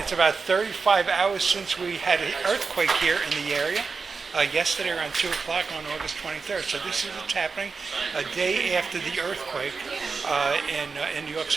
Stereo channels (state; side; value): quieter; left; 4.8 dB